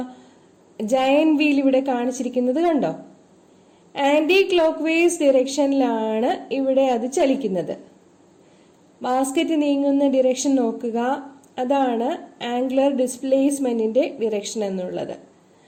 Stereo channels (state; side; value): identical; both; correlation 1.00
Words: ജയന്റ് വീൽ ഇവിടെ കാണിച്ചിരിക്കുന്നത് കണ്ടോ? ആന്റി ക്ലോക്ക് വൈസ് ഡിറക്ഷനിലാണ് ഇവിടെ അത് ചലിക്കുന്നത്. ബാസ്കറ്റ് നീങ്ങുന്ന ഡിറക്ഷൻ നോക്കുക. അതാണ് ആംഗുലർ ഡിസ്പ്ലേസ്മെന്റിന്റെ ഡിറക്ഷൻ എന്നുള്ളത്.